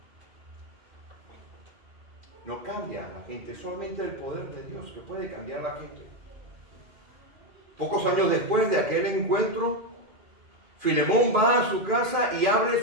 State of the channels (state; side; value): late; left; 2.5 ms